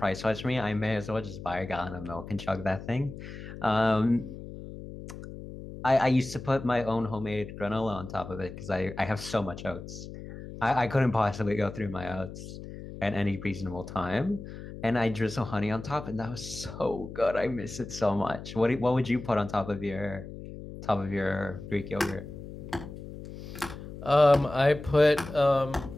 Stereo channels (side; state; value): left; noise; hum, 12 dB below the sound